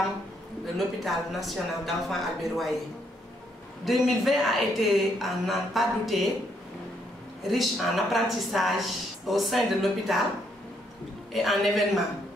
de l'hôpital national d'enfants Albert Royer. 2020 a été, à n'en pas douter, riche en apprentissage au sein de l'hôpital et en événements.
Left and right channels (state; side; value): normal; both; correlation 0.73